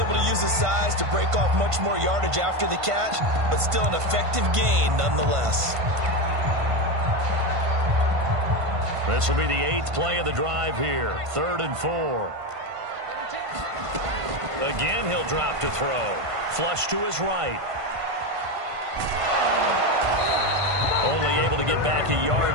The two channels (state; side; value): late; left; 1.5 ms